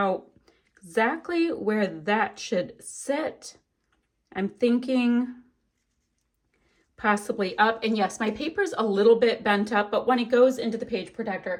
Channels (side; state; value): both; identical; correlation 1.00